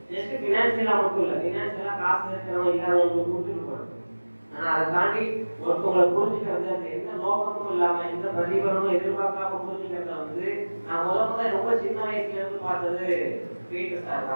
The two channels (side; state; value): both; inverted; correlation -1.00